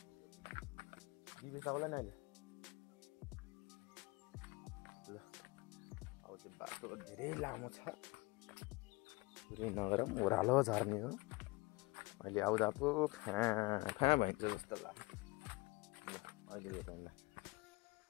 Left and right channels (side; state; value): right; quieter; 24.1 dB